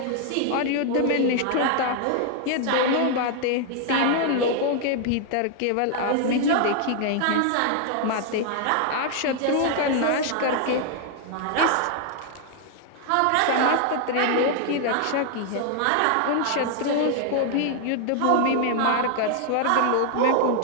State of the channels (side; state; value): both; different; correlation 0.00